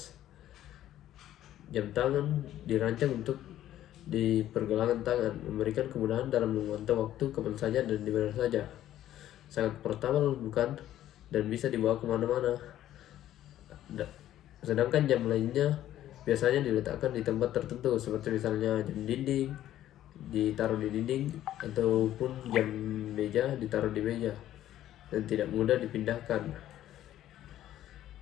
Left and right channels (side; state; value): right; quieter; 12.6 dB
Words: Jam tangan dirancang untuk di pergelangan tangan, memberikan kemudahan dalam memantau waktu kapan saja dan di mana saja. Sangat portable bukan? Dan bisa dibawa kemana-mana. Sedangkan jam lainnya biasanya diletakkan di tempat tertentu, seperti misalnya jam dinding ditaruh di dinding, ataupun jam meja ditaruh di meja dan tidak mudah dipindahkan.